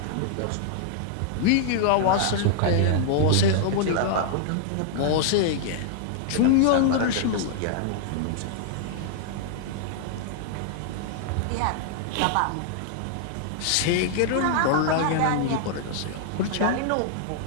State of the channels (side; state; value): both; different; correlation -0.01